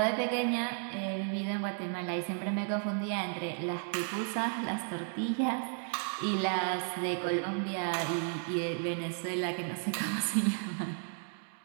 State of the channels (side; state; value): left; silent; 55 dB below the other